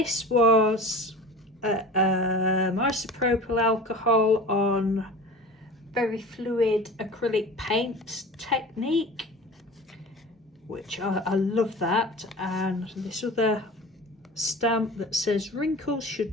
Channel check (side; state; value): both; normal; correlation 0.37